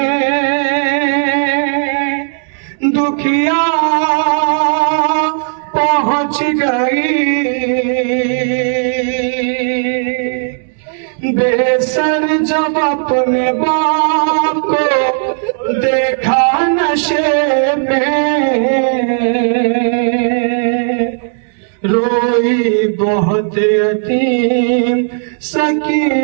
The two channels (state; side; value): silent; left; digital silence